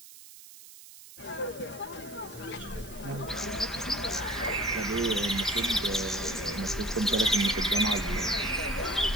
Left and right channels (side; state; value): right; noise; hiss, 18 dB below the sound